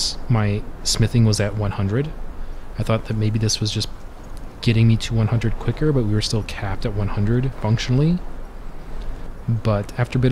my smithing was at 100. I thought that maybe this was just getting me to 100 quicker, but we were still capped at 100 functionally. But after a bit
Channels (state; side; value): identical; both; correlation 1.00